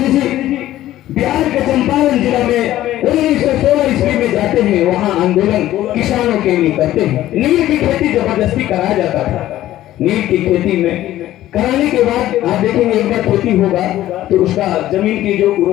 जी बिहार के चंपारण जिला में 1916 ईस्वी में जाते हैं, वहां आंदोलन किसानों के लिए करते हैं। नील की खेती जबरदस्ती कराया जाता था। नील की खेती में कराने के बाद आप देखेंगे एक बार खेती होगा तो उसका जमीन की जो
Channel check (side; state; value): right; quieter; 14.1 dB